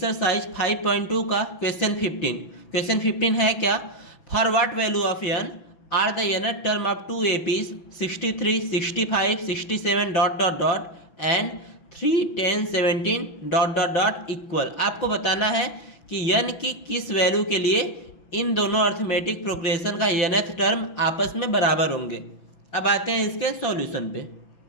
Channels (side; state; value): right; late; 6.0 ms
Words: 5.2 का क्वेश्चन 15। क्वेश्चन 15 है क्या? For what value of n are the nth term of two APs 63, 65, 67 dot dot dot and 3, 10, 17 dot dot dot equal. आपको बताना है कि n की किस वैल्यू के लिए इन दोनों अर्थमेटिक प्रोग्रेशन का nth टर्म आपस में बराबर होंगे। अब आते हैं इसके सॉल्यूशन पे।